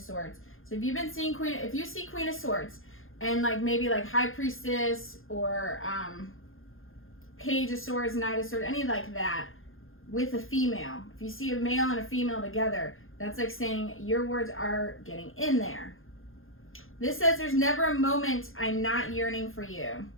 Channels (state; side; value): late; right; 0.60 ms